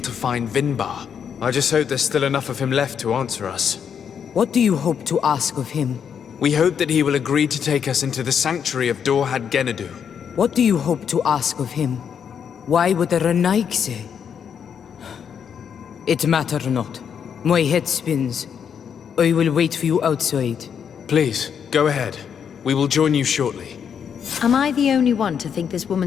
find Vinbar. I just hope there's still enough of him left to answer us. What do you hope to ask of him? We hope that he will agree to take us into the sanctuary of Dorhad Genadu. What do you hope to ask of him? Why would the Renaig say? It matter not. My head spins. I will wait for you outside. Please, go ahead. We will join you shortly. Am I the only one to think this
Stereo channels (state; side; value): quieter; right; 7.6 dB